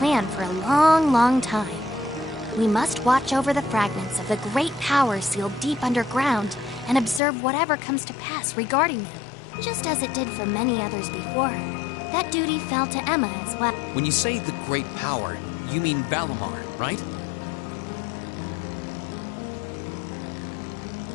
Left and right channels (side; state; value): right; drops out; at 7.2 s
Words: for a long, long time. We must watch over the fragments of the great power sealed deep underground and observe whatever comes to pass regarding them, just as it did for many others before her. That duty fell to Emma as well. When you say the great power, you mean Valimar, right?